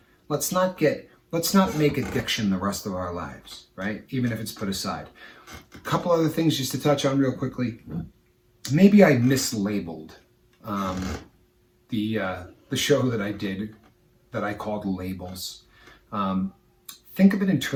Let's not make addiction the rest of our lives, right? Even if it's put aside. A couple other things just to touch on real quickly. Maybe I mislabeled the show that I did that I called Labels. Think of it in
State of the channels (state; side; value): identical; both; correlation 1.00